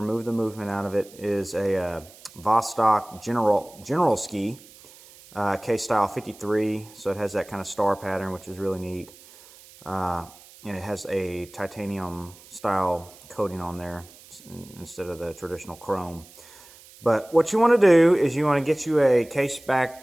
the movement out of it, is a Vostok General Ski case style 53. So it has that kind of star pattern, which is really neat. And it has a titanium style coating on there instead of the traditional chrome. But what you want to do is you want to get you a case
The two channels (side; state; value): right; noise; hiss, 22 dB below the sound